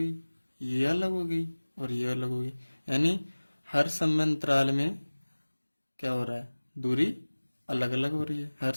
ये अलग हो गई और ये अलग हो गई। यानी हर समय अंतराल में क्या हो रहा है? दूरी अलग अलग हो रही है हर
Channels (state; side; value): inverted; both; correlation -1.00